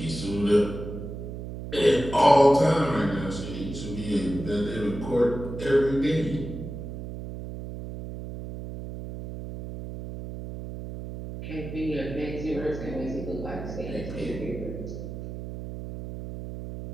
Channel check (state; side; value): noise; right; hum, 9 dB below the sound